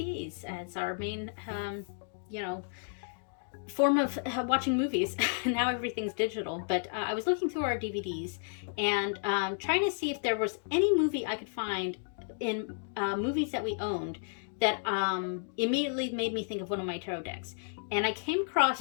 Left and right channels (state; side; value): silent; right; digital silence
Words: as our main, form of watching movies. Now everything's digital, but I was looking through our DVDs and trying to see if there was any movie I could find in movies that we owned that immediately made me think of one of my tarot decks. And I came